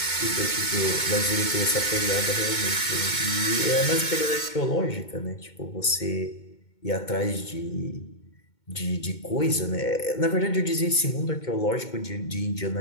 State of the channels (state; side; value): late; right; 2.2 ms